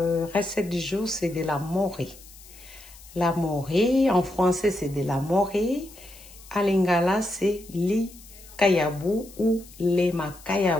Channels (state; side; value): noise; left; hiss, 21 dB below the sound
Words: recette du jour, c'est de la morée. La morée, en français, c'est de la morée. En lingala, c'est li kayabu ou le